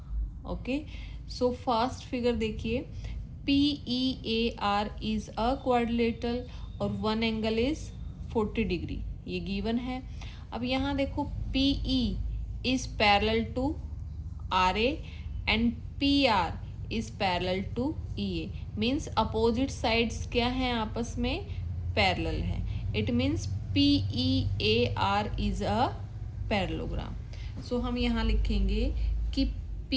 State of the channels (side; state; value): both; identical; correlation 1.00